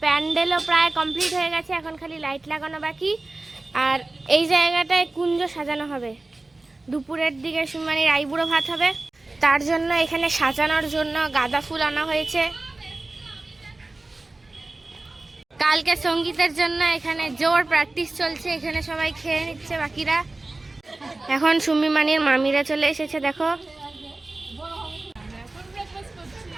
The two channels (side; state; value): left; quieter; 3.1 dB